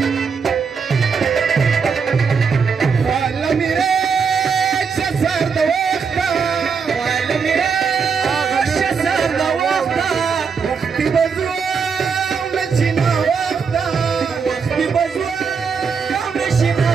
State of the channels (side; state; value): left; quieter; 5.8 dB